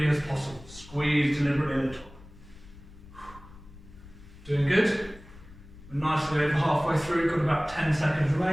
as possible. Squeeze deliberately at the top. Doing good. We're nicely over halfway through, got about 10 seconds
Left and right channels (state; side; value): noise; left; rumble, 19 dB below the sound